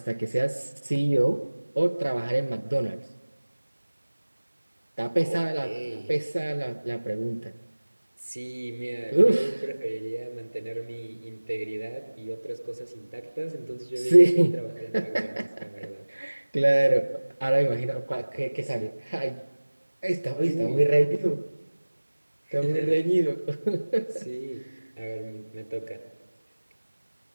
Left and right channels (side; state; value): both; inverted; correlation -1.00